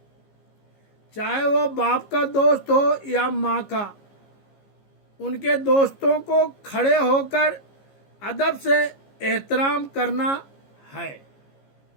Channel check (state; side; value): late; right; 15 ms